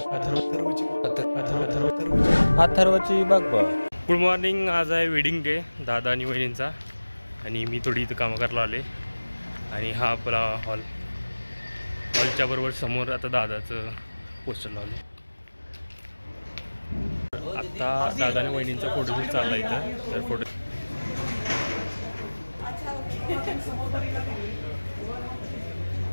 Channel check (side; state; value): both; inverted; correlation -1.00